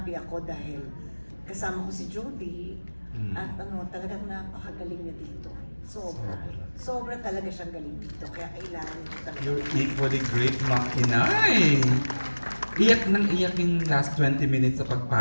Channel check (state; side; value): inverted; both; correlation -1.00